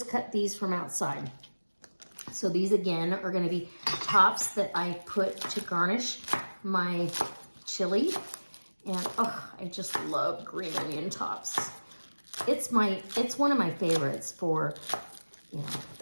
cut these from outside. So these again are gonna be tops that I put to garnish my chili. And I just love green onion tops. It's one of my favorites for,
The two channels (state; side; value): inverted; both; correlation -1.00